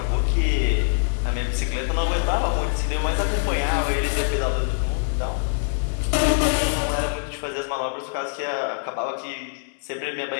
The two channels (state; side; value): silent; right; digital silence